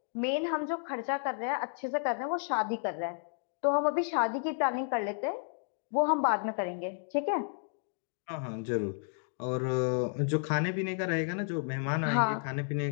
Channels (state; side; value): silent; right; digital silence